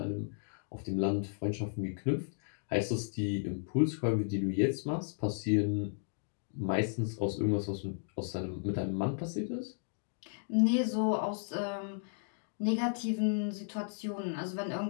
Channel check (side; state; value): right; silent; digital silence